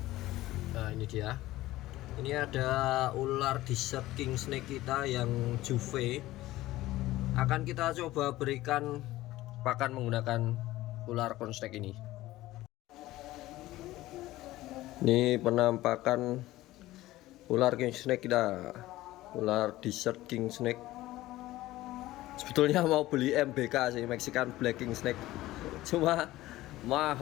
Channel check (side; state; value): right; quieter; 16.7 dB